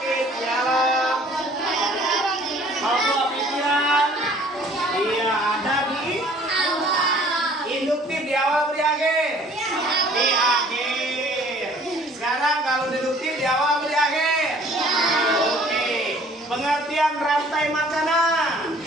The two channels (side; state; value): both; normal; correlation 0.54